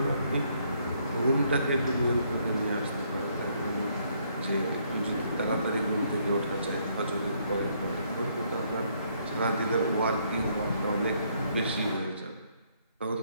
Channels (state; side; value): inverted; both; correlation -0.70